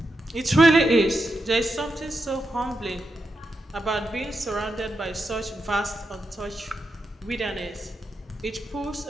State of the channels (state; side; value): normal; both; correlation 0.86